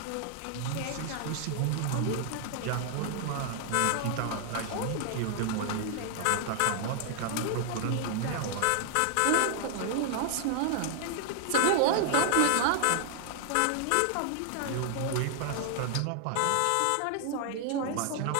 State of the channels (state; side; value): different; both; correlation 0.00